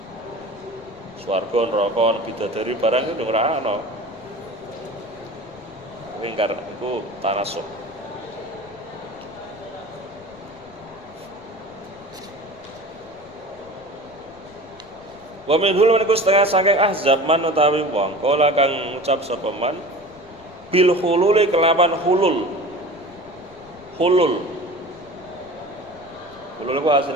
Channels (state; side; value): noise; left; rumble, 26 dB below the sound